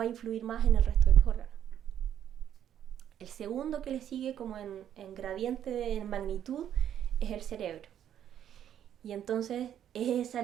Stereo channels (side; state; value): left; quieter; 10.1 dB